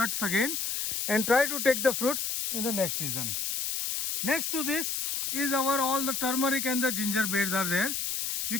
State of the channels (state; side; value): noise; left; hiss, 1 dB below the sound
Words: again and try to take the fruits in the next season. Next to this is our all the turmeric and the ginger beds are there. You